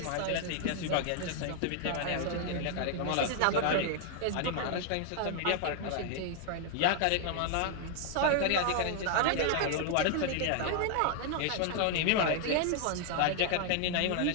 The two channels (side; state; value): both; different; correlation 0.00